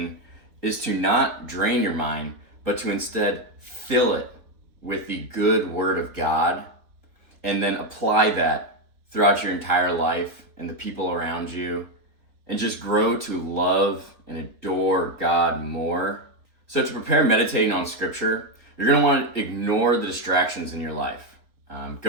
is to not drain your mind, but to instead fill it with the good word of God and then apply that throughout your entire life and the people around you, and just grow to love and adore God more. So to prepare meditating on scripture, you're going to want to ignore the distractions in your life.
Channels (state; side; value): late; left; 3.9 ms